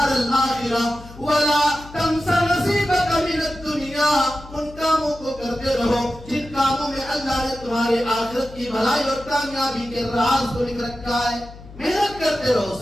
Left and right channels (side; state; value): left; noise; hum, 18 dB below the sound